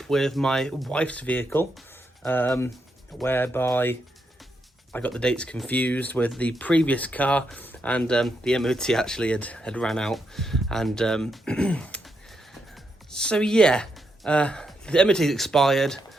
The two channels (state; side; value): normal; both; correlation 0.81